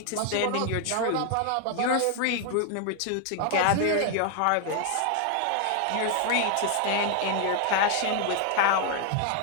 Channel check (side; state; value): both; different; correlation 0.00